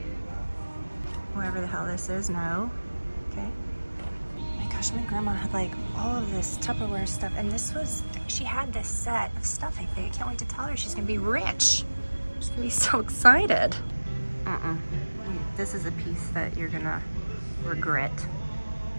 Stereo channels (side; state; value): both; inverted; correlation -1.00